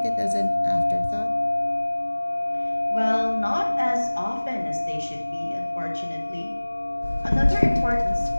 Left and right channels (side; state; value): both; inverted; correlation -1.00